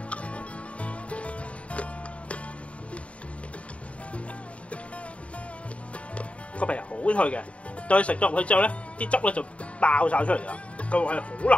個皮係好脆嘅，到你食咗入去之後咧，啲汁咧就爆晒出嚟啦，個胃係好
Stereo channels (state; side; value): late; right; 0.064 ms